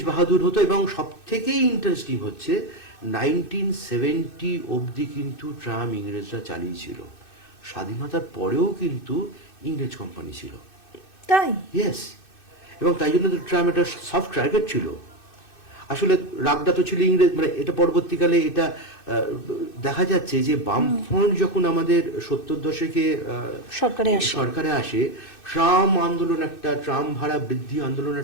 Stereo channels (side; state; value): right; late; 2.6 ms